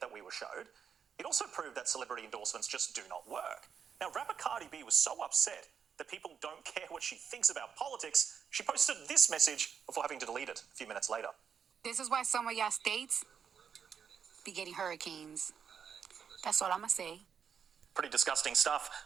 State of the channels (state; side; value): quieter; left; 7.2 dB